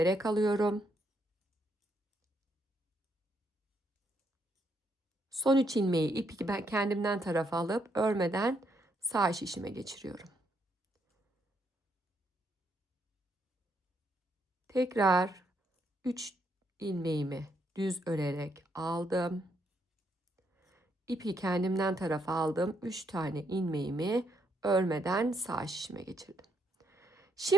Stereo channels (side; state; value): both; normal; correlation 0.76